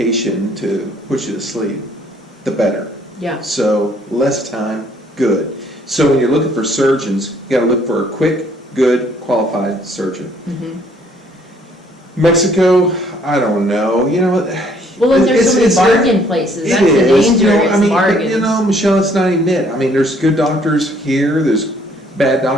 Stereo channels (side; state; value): both; normal; correlation 0.63